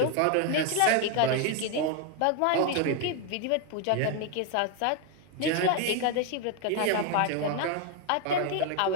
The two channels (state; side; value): different; both; correlation 0.01